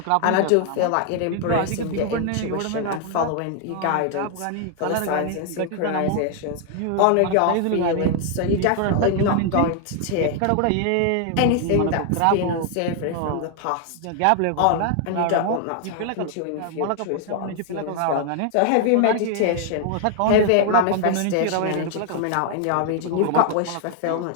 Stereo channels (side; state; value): both; different; correlation 0.00